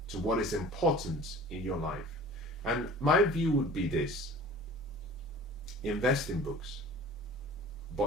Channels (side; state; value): both; normal; correlation 0.43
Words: to what is important in your life. And my view would be this: invest in books,